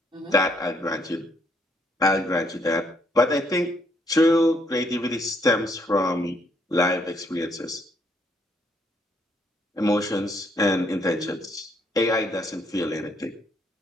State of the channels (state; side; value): normal; both; correlation 0.71